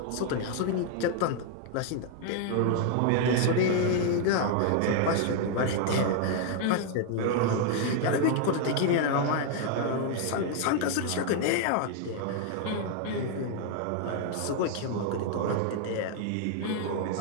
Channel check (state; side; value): different; both; correlation 0.00